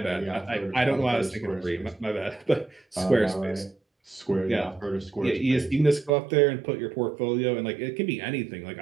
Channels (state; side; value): drops out; left; at 6.1 s